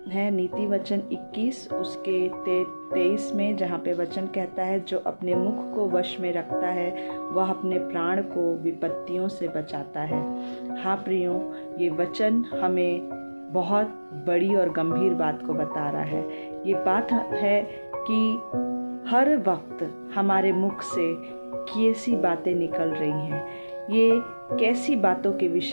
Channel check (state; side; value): inverted; both; correlation -1.00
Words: नीति वचन 21 उसके 23 में, जहाँ पे वचन कहता है, जो अपने मुख को वश में रखता है वह अपने प्राण को विपत्तियों से बचाता है। हाँ प्रियों, ये वचन हमें बहुत बड़ी और गंभीर बात को बता रहा है। ये बात है कि हर वक्त हमारे मुख से कैसी बातें निकल रही हैं, ये कैसी बातों के